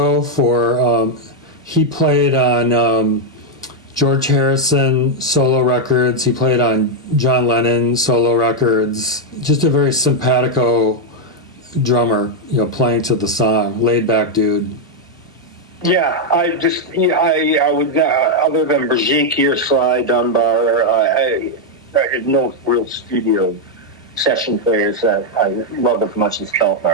for, he played on George Harrison solo records, he played on John Lennon solo records, just a very simpatico drummer, playing to the song, laid back dude. Yeah, I would, other than Brigitte or Sly Dunbar, I had no real studio session players that I loved as much as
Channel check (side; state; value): both; normal; correlation 0.00